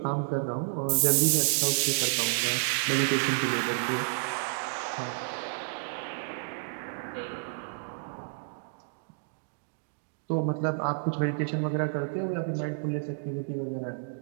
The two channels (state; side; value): silent; left; digital silence